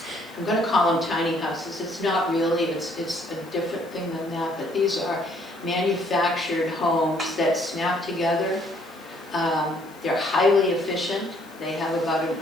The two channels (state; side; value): noise; left; hiss, 25 dB below the sound